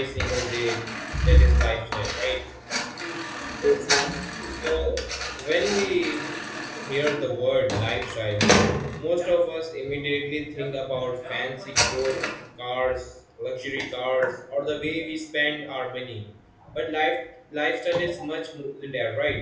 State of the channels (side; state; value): both; identical; correlation 1.00